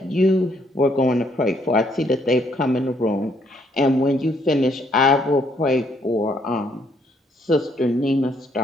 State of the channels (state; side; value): normal; both; correlation 0.69